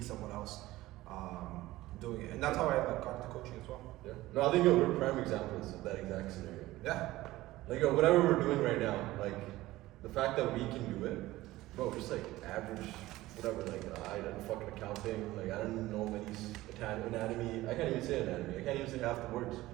someone else doing it. And that's how I like, got into coaching as well. Yeah. No, I think we're prime examples of that exact scenario. Yeah. Like whatever we're doing right now, like the fact that we can do it, bro, just like average, whatever, like I did fucking accounting, like I don't know many anatomy, I can't even say anatomy, I can't even say half the words,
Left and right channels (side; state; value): left; quieter; 17.3 dB